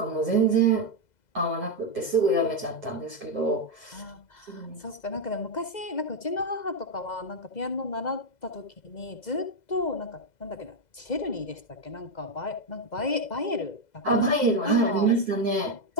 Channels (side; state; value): right; late; 2.0 ms